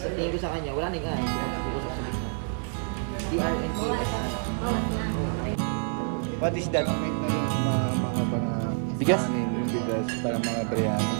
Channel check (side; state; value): left; silent; 60 dB below the other